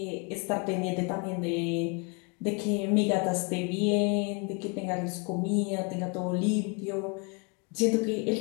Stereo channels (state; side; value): quieter; right; 32.8 dB